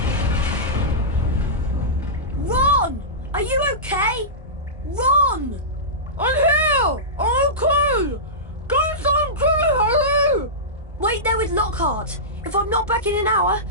Run! Are you okay? Run! I'm here! I'm okay! Guys, I'm good, Harry! Wait there with Lockhart. If I'm not back in an hour...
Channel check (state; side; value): normal; both; correlation -0.17